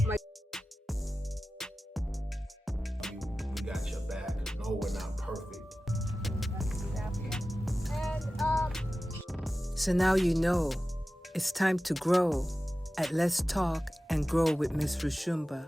my we got your back. No, we're not perfect. So now you know it's time to grow at Let's Talk and Grow with Miss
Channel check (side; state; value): both; normal; correlation 0.95